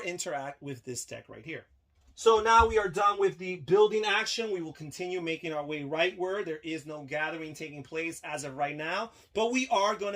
interact with this deck right here. So now we are done with the building action. We will continue making our way rightward. There is no gathering taking place as of right now, but we are going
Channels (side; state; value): both; identical; correlation 1.00